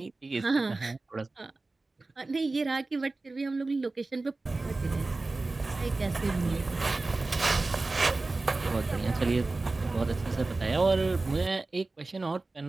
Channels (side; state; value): left; quieter; 3.4 dB